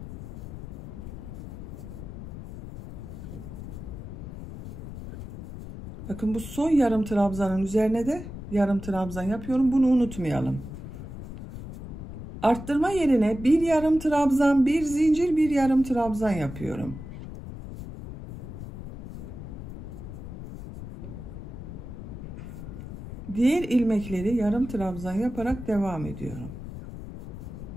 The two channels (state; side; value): noise; left; rumble, 11 dB below the sound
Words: Bakın bu son yarım trabzanın üzerine de yarım trabzan yapıyorum. Bunu unutmayalım. Arttırma yerine bir yarım trabzan, bir zincir, bir yarım trabzan yapıyorum. Diğer ilmekleri yarım trabzan yaparak devam ediyorum.